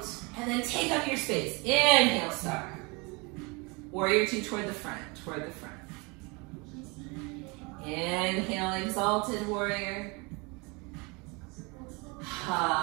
and then take up your space. Inhale, star. Warrior two toward the front, toward the front. Inhale, exalted warrior.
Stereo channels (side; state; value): left; quieter; 28.3 dB